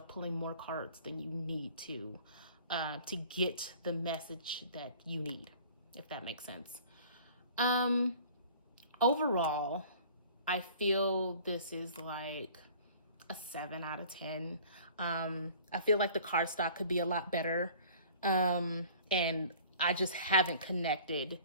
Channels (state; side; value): inverted; both; correlation -0.49